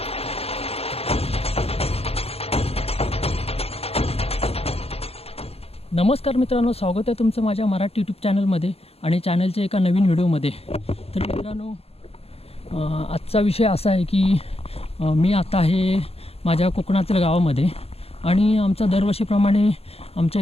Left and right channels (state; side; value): late; right; 0.29 ms